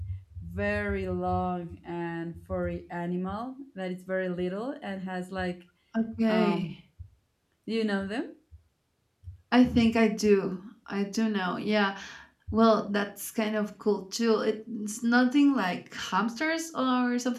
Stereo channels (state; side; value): identical; both; correlation 1.00